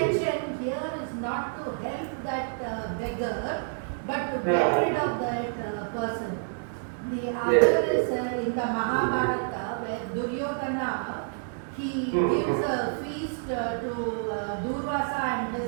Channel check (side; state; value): left; silent; digital silence